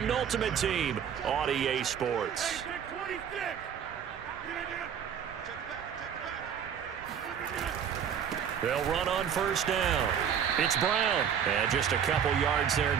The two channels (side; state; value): left; quieter; 8.2 dB